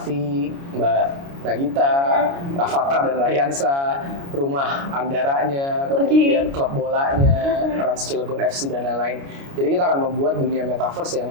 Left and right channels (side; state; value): left; late; 29 ms